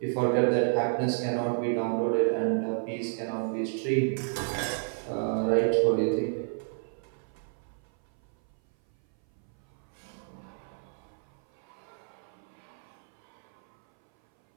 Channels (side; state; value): left; silent; 57 dB below the other